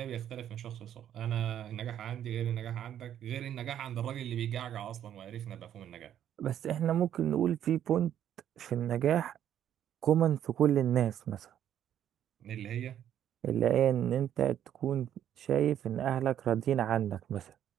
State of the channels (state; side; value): quieter; left; 10.5 dB